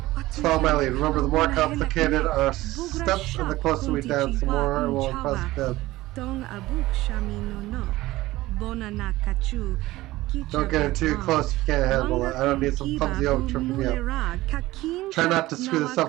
Follow my lead. Remember, the more complicated our steps and the closer we dance, the more we'll impress them. Don't get in too close if you can't handle it. I don't need some clumsy over tripping me up. Try not to screw this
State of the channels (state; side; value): quieter; left; 17.8 dB